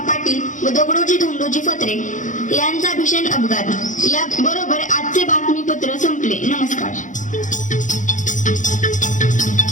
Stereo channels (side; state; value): right; late; 0.37 ms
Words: पाटील व दगडोजी धोंडोजी फत्रे यांचा भीषण अपघात. या बरोबर आजचे बातमीपत्र संपले. नमस्कार.